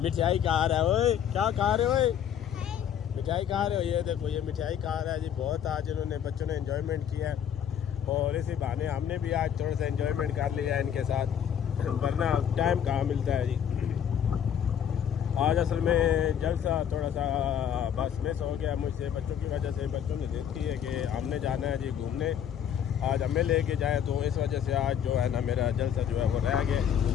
मिठाई खा रहा है। ओए क्या खा रहे हो? मिठाई खा रहे हो? ये देखो ये मिठाई खा रहा है जी। बहुत आज इन्होंने बच्चों ने एंजॉयमेंट किया है और इसी बहाने हमने भी आज थोड़ा सा एंजॉयमेंट कर लिया है इनके साथ, वरना टाइम कहाँ मिलता है जी। आज असल में जलसा थोड़ा सा बस मिस हो गया मुझसे बच्चों की वजह से। बच्चों ने जिद की है कि हमने जाना है जी घूमने, आज हमें लेके जाए, तो इस वजह से आज जो है ना मेरा जलसा जो है वो रह गया।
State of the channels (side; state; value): right; quieter; 9.0 dB